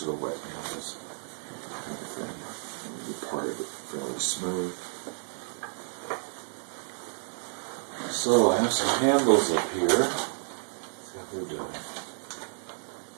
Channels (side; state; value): left; silent; 57 dB below the other